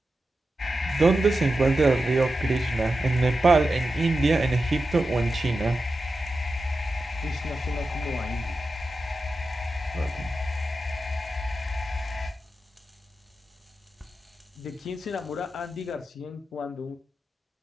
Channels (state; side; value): normal; both; correlation 0.91